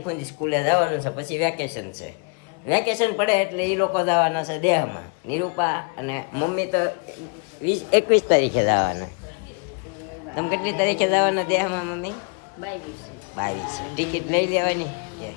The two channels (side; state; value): right; quieter; 36.5 dB